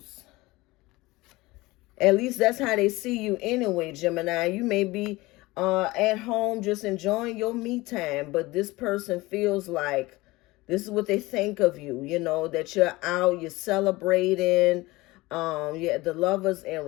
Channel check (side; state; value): right; quieter; 20.7 dB